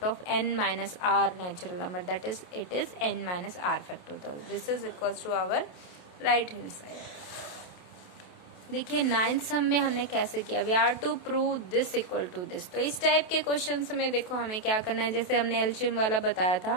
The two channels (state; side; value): late; right; 28 ms